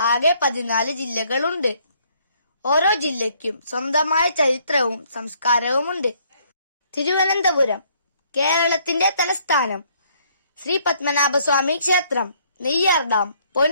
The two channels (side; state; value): both; inverted; correlation -0.65